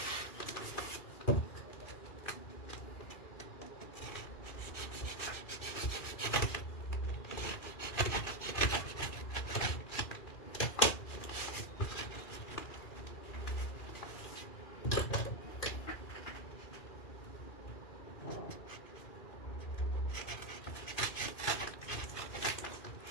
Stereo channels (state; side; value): late; right; 2.4 ms